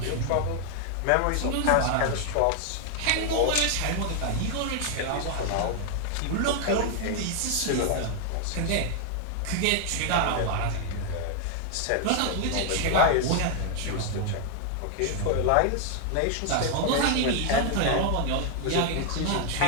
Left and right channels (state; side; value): different; both; correlation 0.00